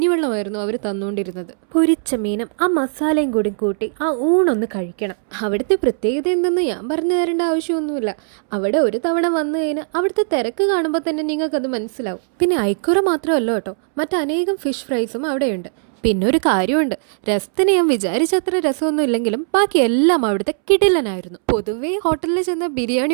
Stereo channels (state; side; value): silent; left; 67 dB below the other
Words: അവർ തന്നുകൊണ്ടിരുന്നത്. പൊരിച്ച മീനും ആ മസാലയും കൂടി കൂട്ടി ആ ഊണൊന്ന് കഴിക്കണം. അവിടുത്തെ പ്രത്യേകത എന്തെന്ന് ഞാൻ പറഞ്ഞു തരേണ്ട ആവശ്യമൊന്നുമില്ല. അവിടെ ഒരു തവണ വന്നു കഴിഞ്ഞാൽ അവിടുത്തെ തിരക്ക് കാണുമ്പോൾ തന്നെ നിങ്ങൾക്കത് മനസ്സിലാവും. പിന്നെ ഐക്കുറ മാത്രമല്ല കേട്ടോ, മറ്റനേകം ഫിഷ് ഫ്രൈസും അവിടെയുണ്ട്. പിന്നെ ഒരു കാര്യമുണ്ട്, രസത്തിന് ഞാൻ വിചാരിച്ചത്ര രസമൊന്നും ഇല്ലെങ്കിലും ബാക്കി എല്ലാം അവിടുത്തെ കിടിലനായിരുന്നു. പൊതുവേ ഹോട്ടലിൽ ചെന്ന